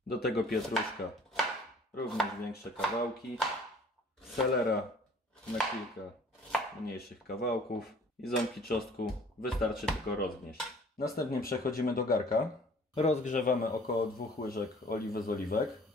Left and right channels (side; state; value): both; normal; correlation 0.51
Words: Do tego pietruszka. Również większe kawałki. Selera na kilka mniejszych kawałków. I ząbki czosnku wystarczy tylko rozgnieść. Następnie przechodzimy do garka. Rozgrzewamy około 2 łyżek oliwy z oliwek,